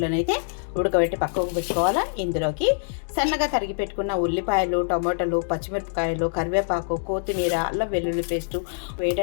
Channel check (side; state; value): right; silent; digital silence